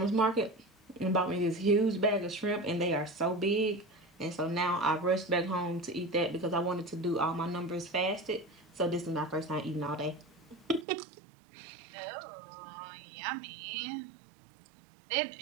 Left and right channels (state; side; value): drops out; left; at 10.9 s